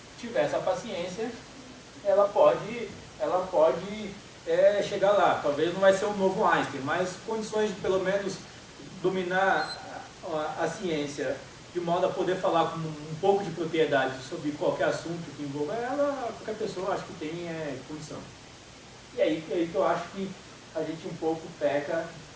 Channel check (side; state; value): both; identical; correlation 1.00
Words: tiver essa paciência, ela pode chegar lá. Talvez não vai ser um novo Einstein, mas condições de, pelo menos, dominar a ciência de modo a poder falar com um pouco de propriedade sobre qualquer assunto que envolva ela, qualquer pessoa acho que tem condição. E aí que eu acho que a gente um pouco peca